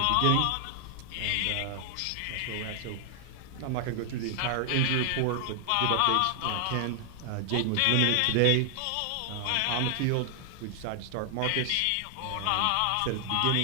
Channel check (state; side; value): different; both; correlation 0.00